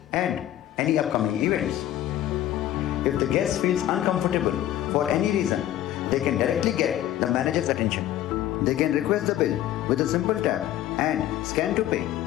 and any upcoming events. If the guest feels uncomfortable for any reason, they can directly get the manager's attention. They can request the bill with a simple tap and scan to pay.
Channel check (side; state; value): right; quieter; 12.8 dB